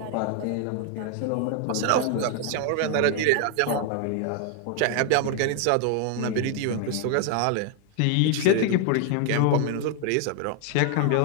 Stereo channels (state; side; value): different; both; correlation 0.00